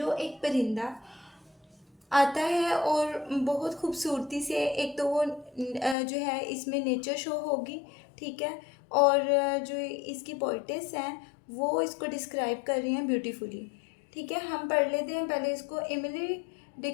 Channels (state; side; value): drops out; right; at 6.0 s